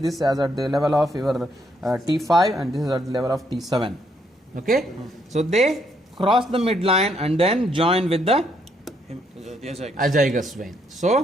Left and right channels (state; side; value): normal; both; correlation 0.73